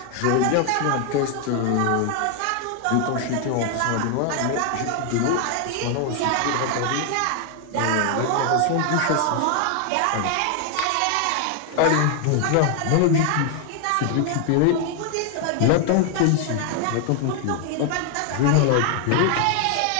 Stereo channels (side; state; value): both; different; correlation 0.00